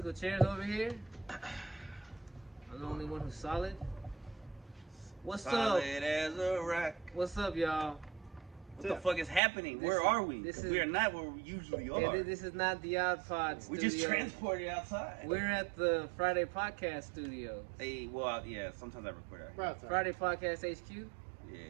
chairs over here. I'm the only one who's solid. What's Solid up? as a rock. What's up, y'all? What the fuck is happening? This Where is- are we? this 'Cause is- we are not where we usually are. Yeah, this is not the Odd Pod we studio. just transported outside. We're at the Friday Podcast Studio. Hey, well, yeah, sometimes I record out here. Friday Podcast HQ. Yeah.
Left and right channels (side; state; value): left; drops out; at 9.4 s